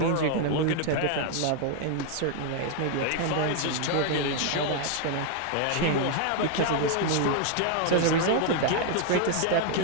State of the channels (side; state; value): both; different; correlation 0.00